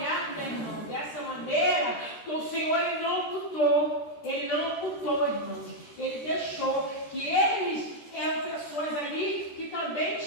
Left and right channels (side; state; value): right; late; 13 ms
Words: né, irmão, dessa maneira, o Senhor Ele não ocultou. Ele não ocultou, irmãos. Ele deixou que eles eram pessoas ali que também